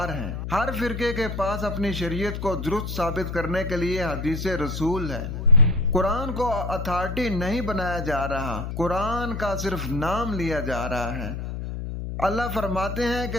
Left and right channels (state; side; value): noise; left; hum, 5 dB below the sound